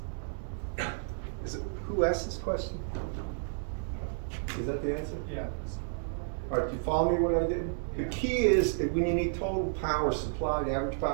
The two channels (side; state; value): left; silent; digital silence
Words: Is it, who asked this question? Is that the answer? Yeah. All right, do you follow me what I did? The key is that when you need total power supply, the average